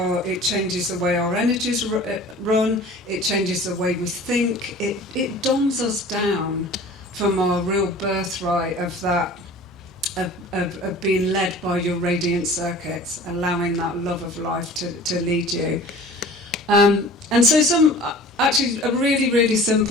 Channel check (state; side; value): normal; both; correlation 0.43